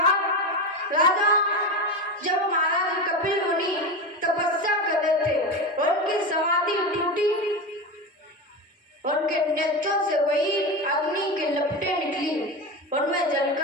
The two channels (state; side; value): normal; both; correlation 0.20